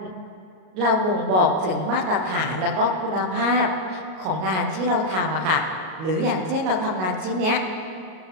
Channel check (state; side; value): late; left; 38 ms